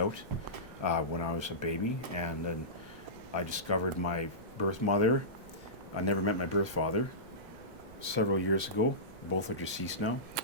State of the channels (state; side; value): late; left; 6.4 ms